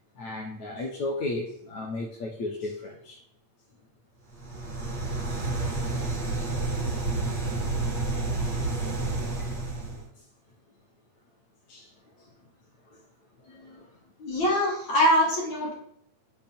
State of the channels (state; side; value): late; right; 8.5 ms